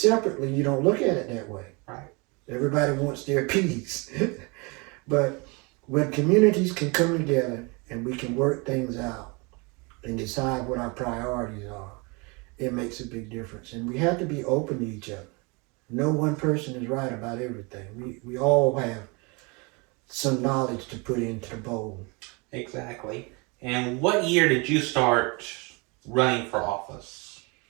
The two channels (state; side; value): quieter; left; 29.2 dB